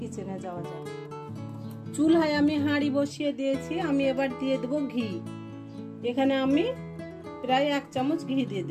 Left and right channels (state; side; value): identical; both; correlation 1.00